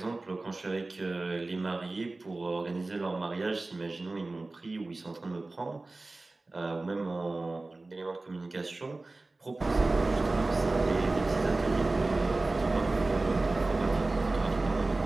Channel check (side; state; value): left; quieter; 3.2 dB